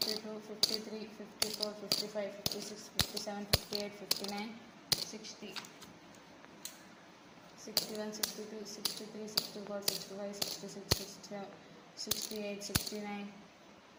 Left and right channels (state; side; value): identical; both; correlation 1.00